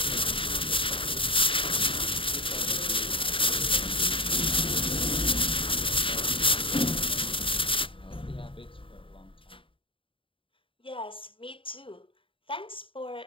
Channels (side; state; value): right; late; 0.25 ms